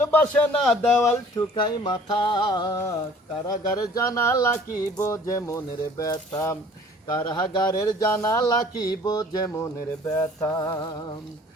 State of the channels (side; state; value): both; normal; correlation 0.52